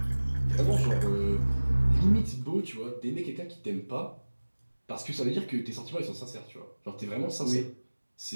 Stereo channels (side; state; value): both; inverted; correlation -1.00